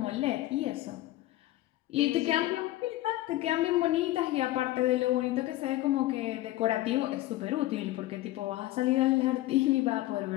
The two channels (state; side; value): quieter; right; 16.4 dB